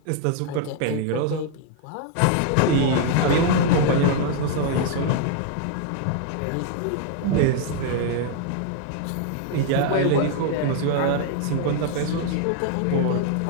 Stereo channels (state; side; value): different; both; correlation 0.00